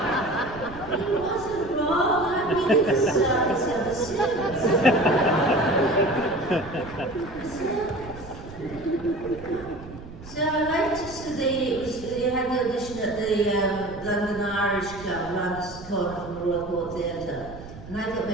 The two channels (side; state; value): right; noise; rumble, 15 dB below the sound